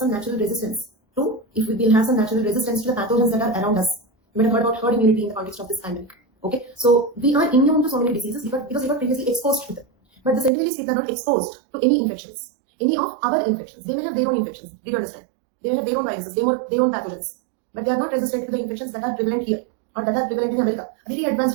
natural resistance to, if we will have some natural resistance to the pathogens that are around us. You might have heard about herd immunity in the context of this pandemic. Okay, so we are immune to so many diseases because we were previously exposed to them. But the Senegalese people are not exposed to any infections, any of our infections. They may have their own infections. Did you understand? They may have their own viruses, their own pathogens, but they are not resistant to the infections that are prevalent here or that are prevalent in America. A very advanced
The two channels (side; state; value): left; drops out; at 10.5 s